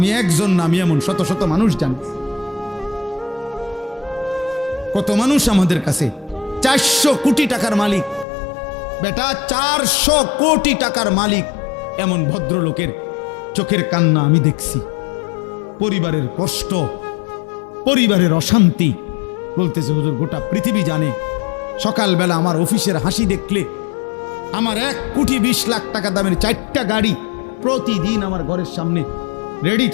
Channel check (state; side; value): drops out; right; at 8.2 s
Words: একজন না, আমি এমন শত শত মানুষ জানি। কত মানুষ আমাদের কাছে 400 কোটি টাকার মালিক, বেটা 400 কোটি টাকার মালিক, এমন ভদ্রলোকের চোখের কান্না আমি দেখছি। পরিবারের কষ্ট, পরিবারের অশান্তি, বলতেছে হুজুর গোটা পৃথিবী জানে। সকালবেলা আমার অফিসের হাসি দেখলে, আমার 1,20,00,000 টাকা দামের 4টা গাড়ি প্রতিদিন আমার ঘরের সামনে রেডি